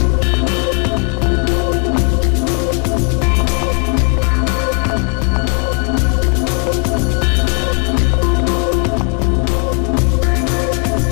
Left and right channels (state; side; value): quieter; right; 38.1 dB